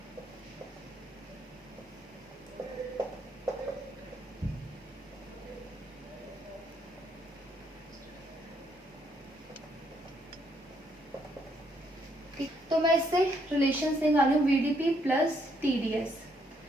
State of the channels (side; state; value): both; normal; correlation 0.72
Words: तो मैं इससे रिलेशन से निकालू वीडीपी प्लस टीडीएस।